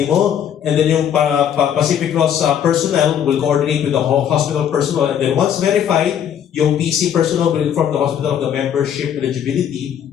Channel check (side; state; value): right; quieter; 9.2 dB